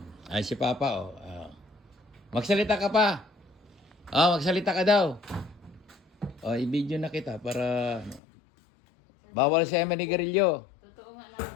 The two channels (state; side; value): drops out; right; at 8.2 s